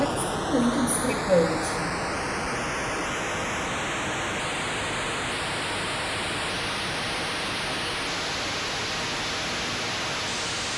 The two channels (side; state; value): right; noise; hum, 24 dB below the sound